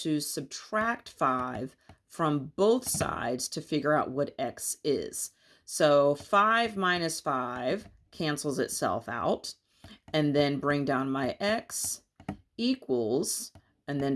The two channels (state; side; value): identical; both; correlation 1.00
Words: subtract 5 from both sides to figure out what x is. So 5 minus 5 cancels itself out, and then bring down my x equals, and then